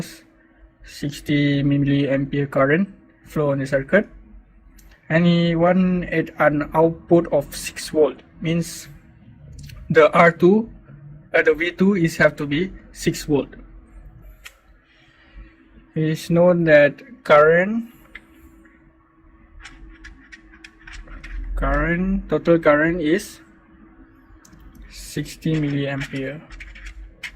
60 milliampere current flow on the circuit, and he wants an output of 6 volt, means the R2 the V2 is have to be 6 volt. It is known that total current is 60 milliampere,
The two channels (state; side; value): identical; both; correlation 1.00